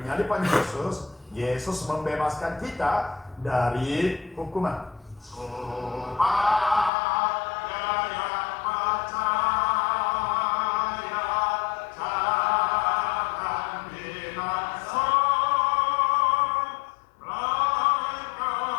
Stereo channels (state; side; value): drops out; right; at 6.9 s